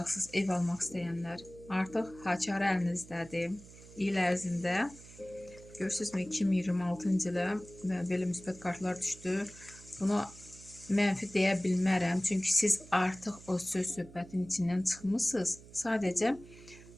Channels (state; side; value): noise; right; hum, 19 dB below the sound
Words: ev almaq istəyənlər. Artıq haçarı əlinizdədir. İl ərzində görürsünüzmü, 2026-cı ilə belə müsbət kartlar düşdü. Buna mənfi deyə bilmərəm, çünki siz artıq o söz-söhbətin içindən çıxmısınız. Sadəcə